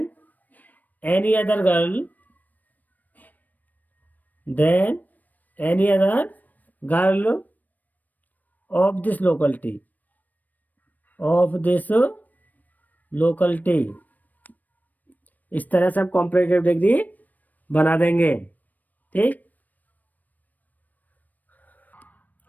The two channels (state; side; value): late; right; 0.083 ms